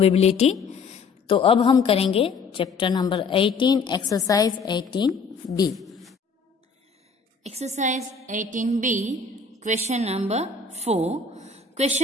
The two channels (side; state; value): right; quieter; 4.7 dB